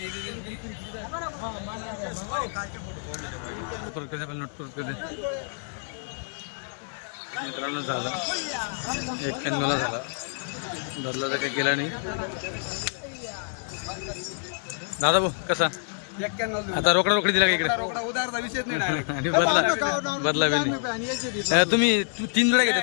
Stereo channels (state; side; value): silent; right; digital silence